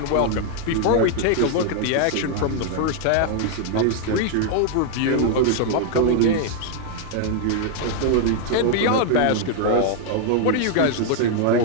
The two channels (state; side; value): different; both; correlation 0.00